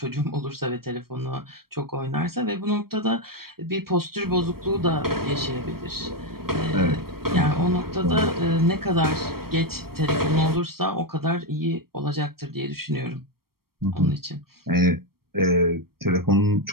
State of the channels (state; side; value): late; left; 0.94 ms